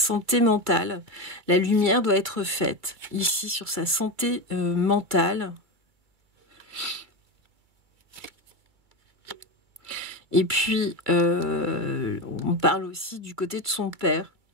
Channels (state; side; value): late; left; 2.3 ms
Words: mentale. La lumière doit être faite ici sur sa santé mentale. Et puis, on parle aussi du côté de son père.